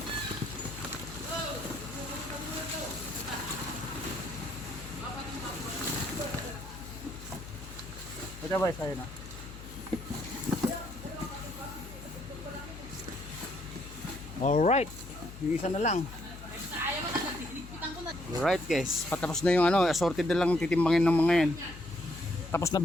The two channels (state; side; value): noise; left; hum, 14 dB below the sound